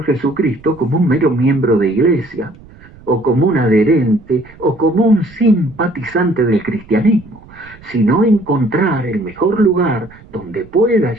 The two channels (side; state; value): right; noise; rumble, 23 dB below the sound